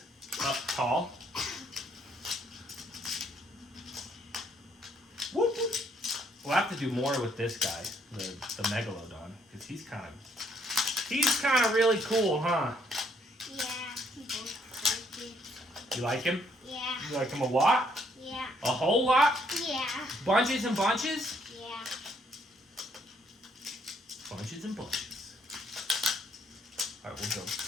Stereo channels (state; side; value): normal; both; correlation 0.69